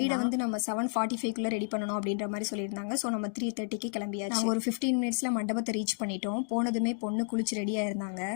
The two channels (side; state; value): right; silent; 57 dB below the other